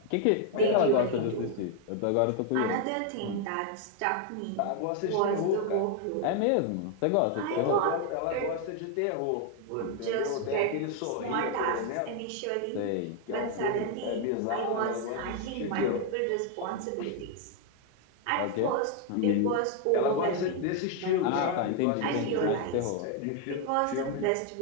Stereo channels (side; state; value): both; different; correlation 0.00